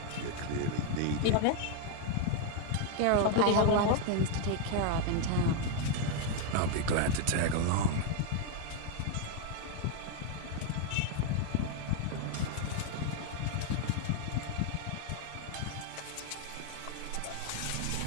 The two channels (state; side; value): different; both; correlation 0.01